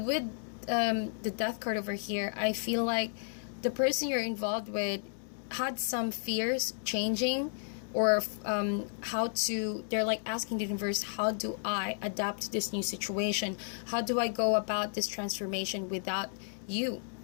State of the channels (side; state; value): right; silent; digital silence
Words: the Death card over here, I feel like the person you're involved with had some fears changing, or they're like asking the universe, how do I adapt to this new situation? How do I go about this transformation without you?